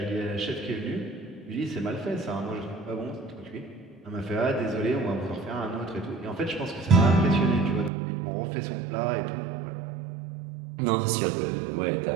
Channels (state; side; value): drops out; left; at 7.9 s